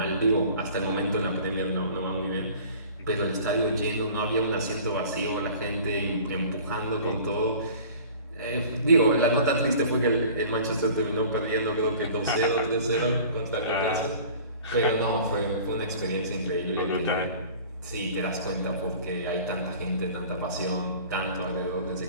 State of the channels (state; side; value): inverted; both; correlation -0.45